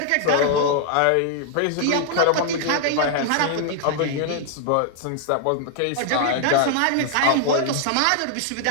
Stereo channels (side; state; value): both; different; correlation 0.00